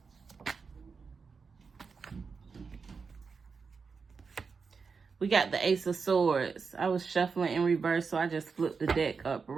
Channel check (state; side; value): quieter; left; 5.2 dB